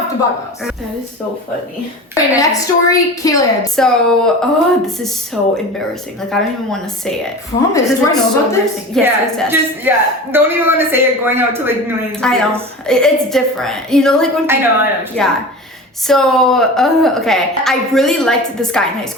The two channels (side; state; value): both; normal; correlation 0.33